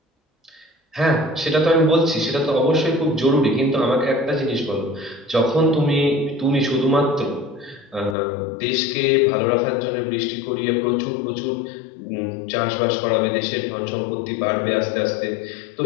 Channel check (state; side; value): drops out; right; at 8.2 s